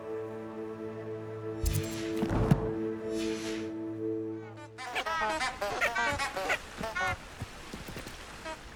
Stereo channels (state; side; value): identical; both; correlation 1.00